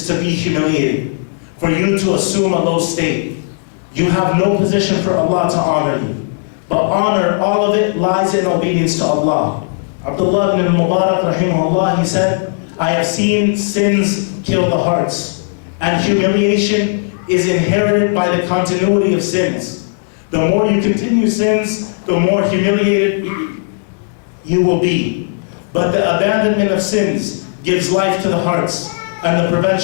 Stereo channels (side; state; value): right; silent; digital silence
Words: to be humiliated, for you to assume a low state. You have no position for Allah to honor you. But honor, all of it lies in obedience to Allah. Abdullah ibn al-Mubarak rahimahullah, he said, I have seen sins kill the hearts, and humiliation is inherited by the continuity of sins. The more you continue sins, the more humiliated you will be. But the abandonment of sins gives life to the hearts, and the